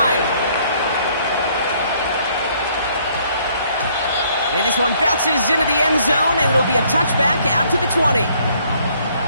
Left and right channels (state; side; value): inverted; both; correlation -0.64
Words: And this one bounces into the end zone, and it'll be a touchback out to the 20.